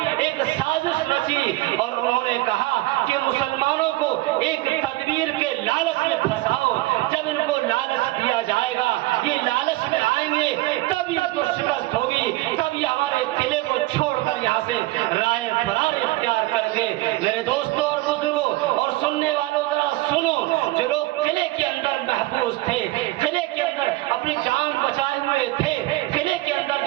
ایک سازش رچی، اور انہوں نے کہا کہ مسلمانوں کو ایک تدبیر کے لالچ میں پھنساؤ۔ جب ان کو لالچ دیا جائے گا، یہ لالچ میں آئیں گے، تب ان کو شکست ہوگی، تب یہ ہمارے قلعے کو چھوڑ کر یہاں سے رائے فرار اختیار کر گے۔ میرے دوستوں اور بزرگوں اور سننے والوں، ذرا سنو، جو لوگ قلعے کے اندر محفوظ تھے، قلعے کے اندر اپنی جان بچائے ہوئے تھے، قلعے کے اندر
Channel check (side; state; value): left; quieter; 19.1 dB